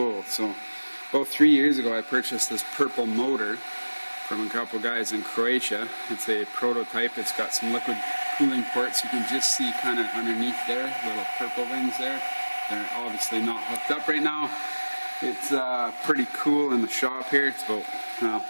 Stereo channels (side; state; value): both; inverted; correlation -1.00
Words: So about 3 years ago I purchased this purple motor from a couple guys in Croatia. It's a prototype. It's got some liquid cooling ports. You can just see kind of underneath there, little purple things there. They're obviously not hooked up right now. It's pretty cool in the shop here. It's about